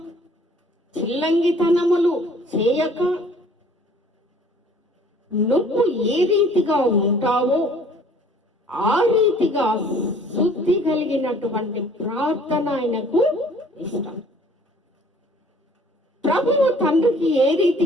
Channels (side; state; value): both; normal; correlation 0.54